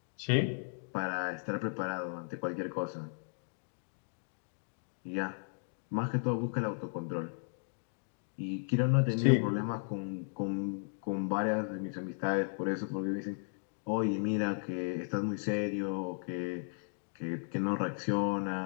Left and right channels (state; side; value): silent; right; digital silence